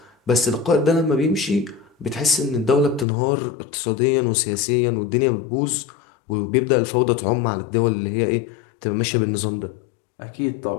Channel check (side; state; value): right; drops out; at 3.1 s